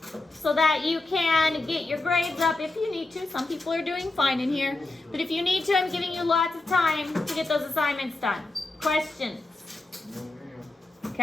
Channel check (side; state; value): right; quieter; 3.0 dB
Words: so that you can get your grades up if you need to. Some people are doing fine in here. But if you need to, I'm giving you lots of time to get those assignments done. Questions?